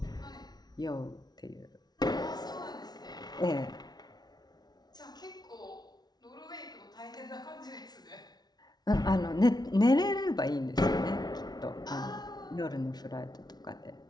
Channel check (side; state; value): right; late; 0.19 ms